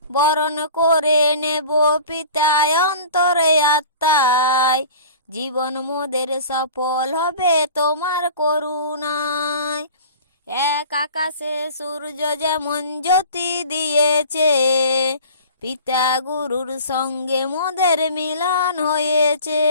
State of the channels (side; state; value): both; inverted; correlation -0.42